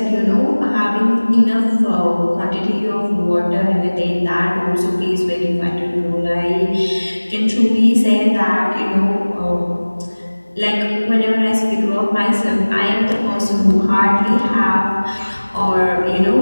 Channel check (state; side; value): inverted; both; correlation -1.00